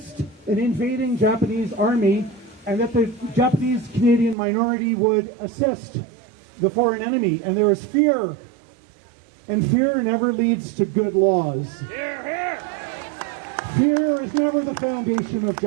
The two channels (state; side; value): drops out; left; at 4.4 s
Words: an invading Japanese army, and that the Japanese Canadian minority would assist the foreign enemy. And there was fear, and fear never leads to good laws. Fear is never the foundation of